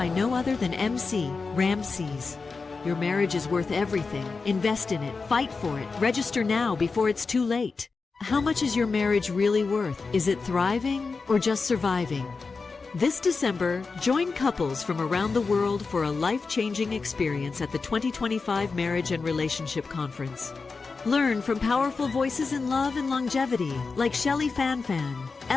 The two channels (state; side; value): quieter; right; 4.4 dB